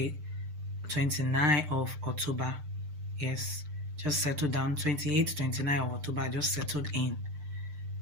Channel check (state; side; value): late; left; 6.7 ms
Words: of October. Yes, just settled down. 28th, 29th of October, I just settled in.